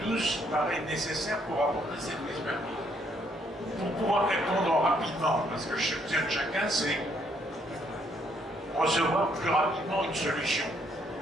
tous paraît nécessaire pour apporter cette expertise. Pour pouvoir répondre rapidement, parce que chacun, c'est recevoir plus rapidement une solution.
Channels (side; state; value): both; normal; correlation 0.70